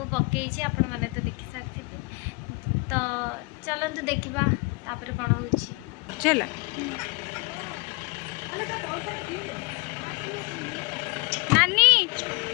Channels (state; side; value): quieter; right; 28.9 dB